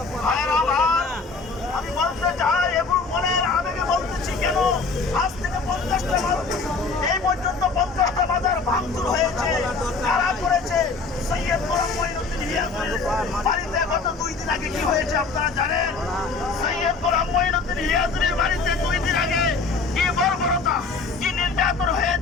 ভাইরা আমার, আমি বলতে চাই এবং মনের আবেগে বলতেছি, কেন আজ থেকে 50টা এই পর্যন্ত 50টা বাজার ভাঙচুর হয়েছে। কারা করেছে? সৈয়দ গোলাম মঈনুদ্দিন হিয়াজুরের বাড়িতে গত 2 দিন আগে কি হয়েছে আপনারা জানেন? সৈয়দ গোলাম মঈনুদ্দিন হিয়াজুরের বাড়িতে 2 দিন আগে কি বর্বরতা, কি নির্যাতন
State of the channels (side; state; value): right; quieter; 4.3 dB